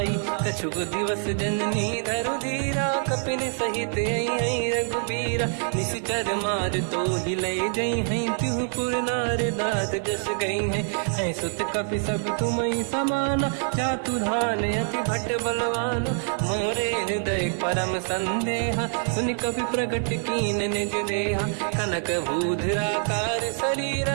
कछुक दिवस जननी धरु धीरा कपिन सहित आई रघुबीरा निश्चर मार तो हिलई जई हैं त्युपुर नार दात जस गई है सुत कपि सब तुमई समाना चातु धान अति भट बलवान मोरे हृदय परम संदेहा सुनि कपि प्रकट कीन निज देहा कनक भूधराकार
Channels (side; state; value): left; silent; 61 dB below the other